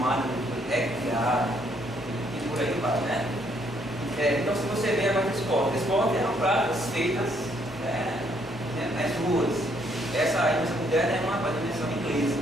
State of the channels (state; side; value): normal; both; correlation 0.69